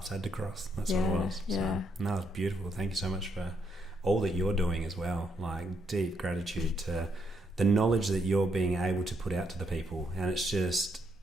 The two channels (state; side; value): normal; both; correlation 0.76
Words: had to cross. That's what it was. So, no, it's beautiful. Thank you so much for all that you're doing as well. Like deep gratitude to the knowledge that you're being able to put out to the people, and it's